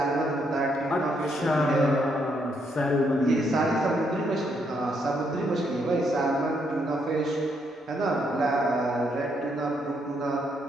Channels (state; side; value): normal; both; correlation 0.75